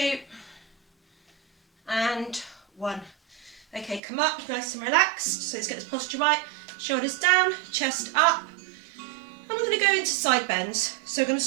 and 1. Okay, come up nice and relaxed. So let's get this posture right. Shoulders down, chest up. And we're going to go into side bends. So I'm going to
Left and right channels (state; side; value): drops out; left; at 4.0 s